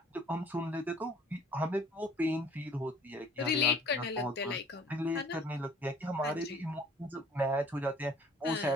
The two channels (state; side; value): normal; both; correlation 0.53